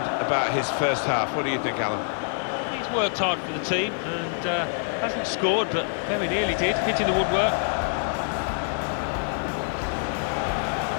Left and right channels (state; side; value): silent; right; 61 dB below the other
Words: about his first half. What do you think, Alan? He's worked hard for the team and hasn't scored, but very nearly did, hitting the woodwork.